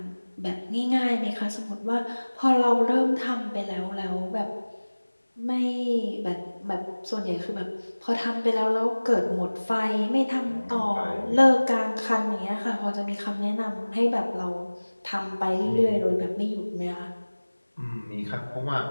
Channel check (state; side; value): inverted; both; correlation -1.00